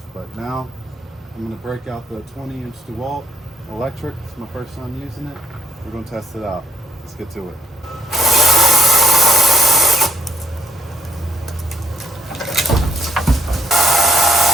But now I'm gonna break out the 20-inch DeWalt electric. It's my first time using it. We're gonna test it out. Let's get to it.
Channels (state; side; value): normal; both; correlation 0.70